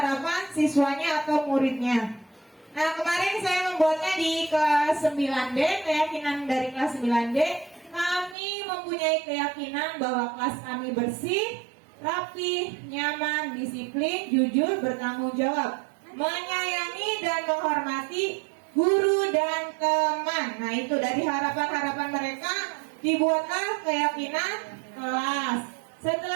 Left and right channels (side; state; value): left; drops out; at 8.3 s